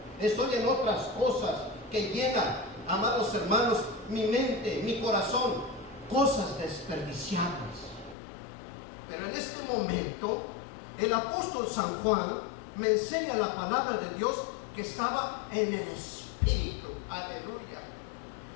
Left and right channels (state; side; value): drops out; right; at 8.2 s